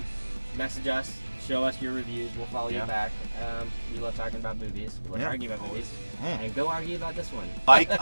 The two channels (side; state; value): both; inverted; correlation -1.00